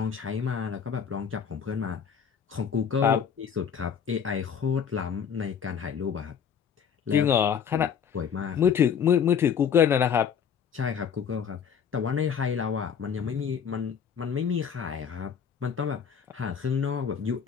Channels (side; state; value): right; quieter; 7.4 dB